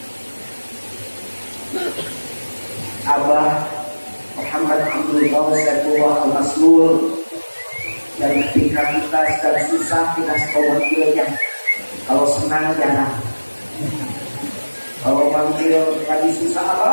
Abah Muhammad Abdul Saifullah Al-Maslul, dan ketika kita sedang susah kita sekolah kalau senang jarang, kalau manggil lagi susah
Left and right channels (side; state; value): both; inverted; correlation -1.00